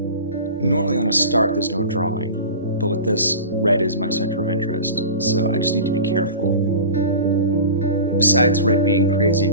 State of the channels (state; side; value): inverted; both; correlation -0.34